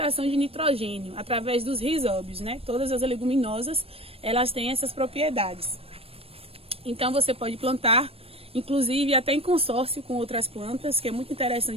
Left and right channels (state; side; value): late; left; 0.28 ms